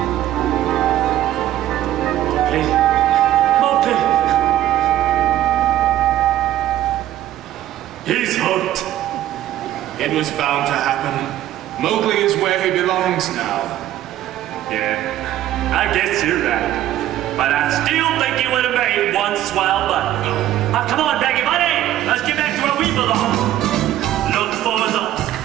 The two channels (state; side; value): quieter; left; 13.0 dB